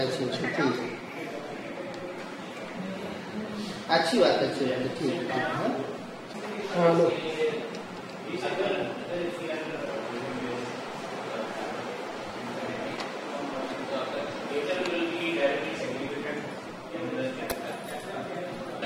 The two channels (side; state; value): both; identical; correlation 1.00